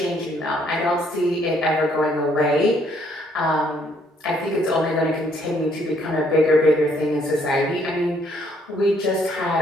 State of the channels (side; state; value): both; normal; correlation 0.67